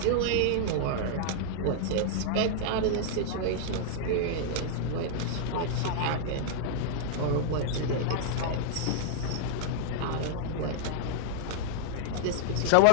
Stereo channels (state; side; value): different; both; correlation -0.01